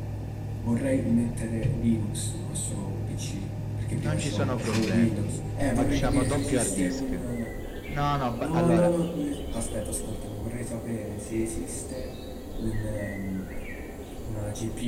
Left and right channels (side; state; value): both; identical; correlation 1.00